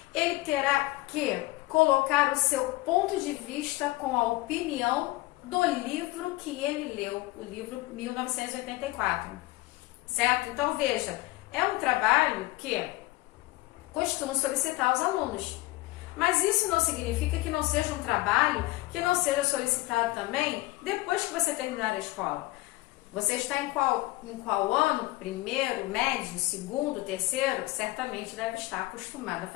ele terá que colocar o seu ponto de vista com a opinião do livro que ele leu, o livro 1984, certo? Então veja, é um trabalho que costumo solicitar aos alunos, mas isso não significa que não seja um trabalho que não seja solicitado também depois que você terminar a escola. Você está em qual ano? Primeiro, médio, segundo, terceiro? Certamente deve estar acostumado a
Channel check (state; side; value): quieter; right; 20.2 dB